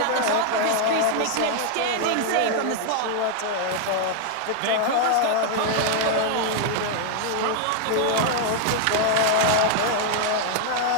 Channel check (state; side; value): different; both; correlation 0.00